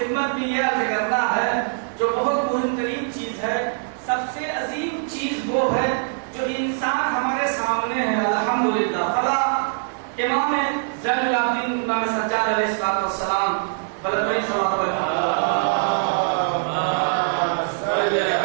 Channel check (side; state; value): left; silent; 64 dB below the other